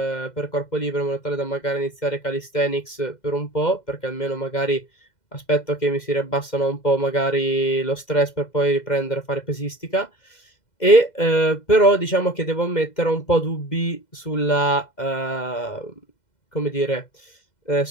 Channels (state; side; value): late; right; 2.0 ms